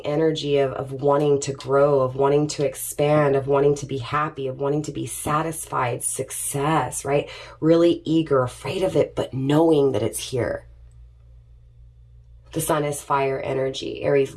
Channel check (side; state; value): both; identical; correlation 1.00